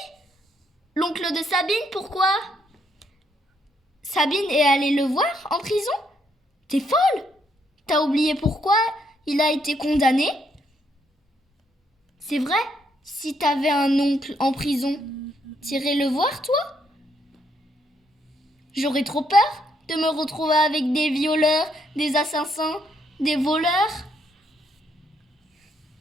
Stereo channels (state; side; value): normal; both; correlation 0.73